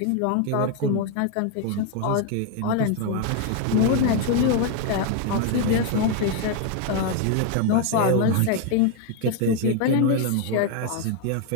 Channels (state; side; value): different; both; correlation 0.01